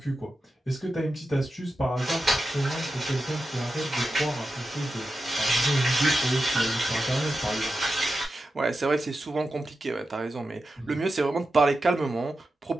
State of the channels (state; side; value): normal; both; correlation 0.91